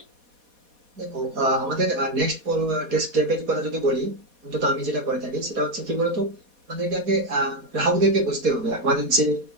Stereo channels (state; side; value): late; left; 4.2 ms